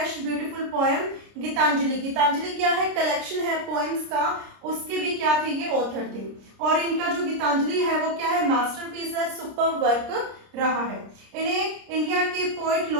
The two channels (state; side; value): late; left; 30 ms